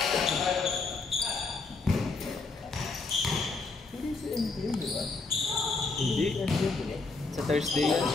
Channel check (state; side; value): quieter; right; 3.9 dB